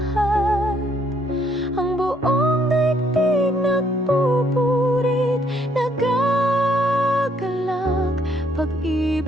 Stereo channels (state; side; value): normal; both; correlation 0.69